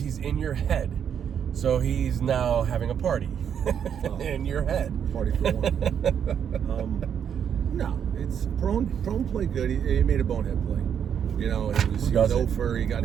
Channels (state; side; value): quieter; left; 8.2 dB